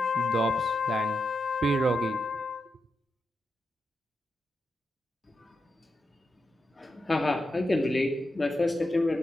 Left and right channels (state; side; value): normal; both; correlation 0.86